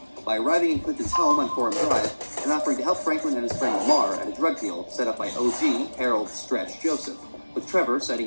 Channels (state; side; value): inverted; both; correlation -1.00